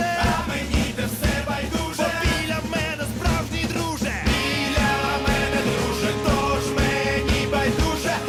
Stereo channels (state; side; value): identical; both; correlation 1.00